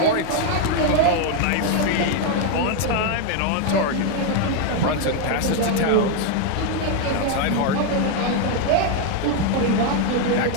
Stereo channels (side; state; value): both; different; correlation 0.01